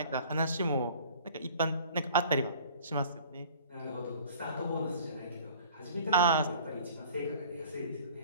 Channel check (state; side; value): inverted; both; correlation -0.48